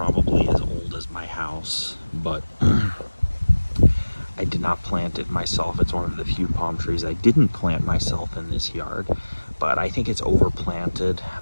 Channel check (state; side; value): inverted; both; correlation -1.00